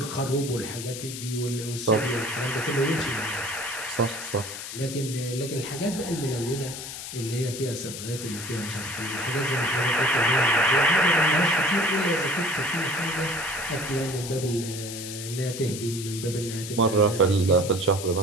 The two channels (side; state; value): left; noise; hiss, 9 dB below the sound